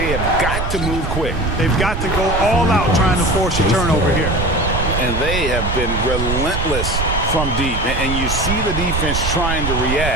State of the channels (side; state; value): right; noise; rumble, 3 dB below the sound